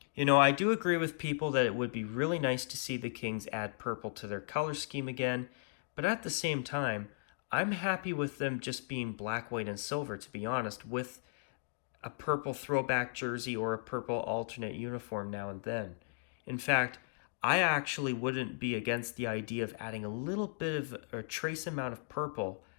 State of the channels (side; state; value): right; silent; digital silence